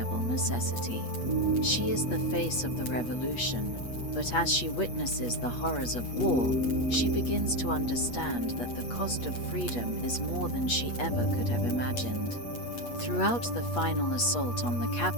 necessity. She is the face of the revolution, but as she witnesses the horrors of war, she begins to understand that the cost of freedom is more than she ever could have imagined. Throughout the final assault on the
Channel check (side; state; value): right; late; 8.4 ms